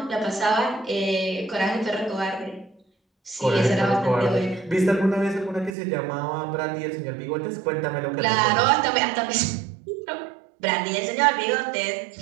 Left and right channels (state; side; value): drops out; left; at 5.8 s